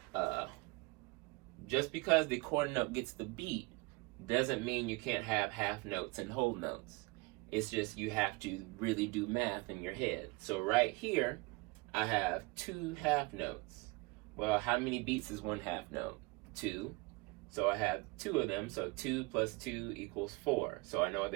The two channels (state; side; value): quieter; left; 26.0 dB